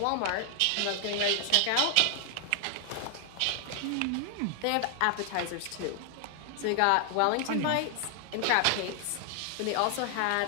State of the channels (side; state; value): both; different; correlation 0.00